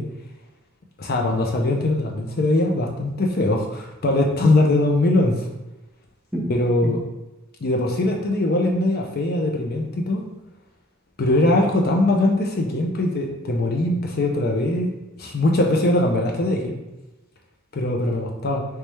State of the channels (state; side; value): normal; both; correlation 0.57